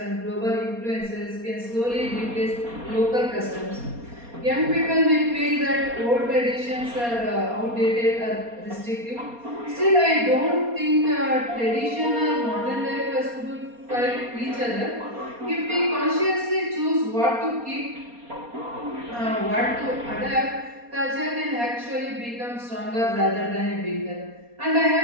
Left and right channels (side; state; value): left; late; 4.2 ms